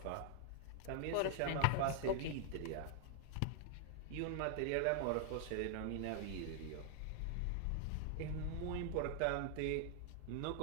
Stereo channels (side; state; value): both; different; correlation 0.00